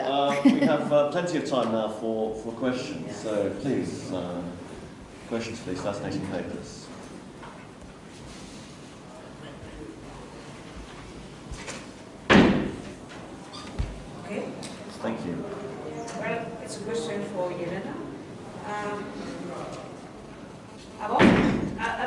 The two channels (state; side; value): identical; both; correlation 1.00